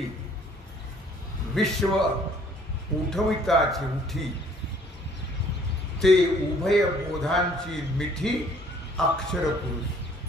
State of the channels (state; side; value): normal; both; correlation 0.59